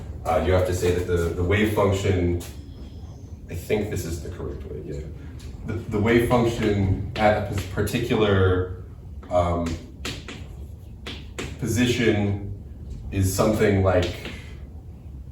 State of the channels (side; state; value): both; identical; correlation 1.00